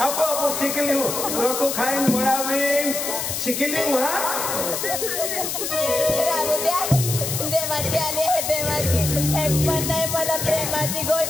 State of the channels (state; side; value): noise; left; hiss, 3 dB below the sound